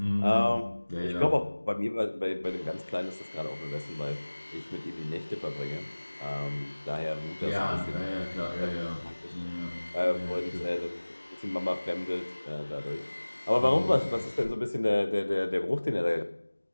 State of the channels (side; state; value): both; inverted; correlation -1.00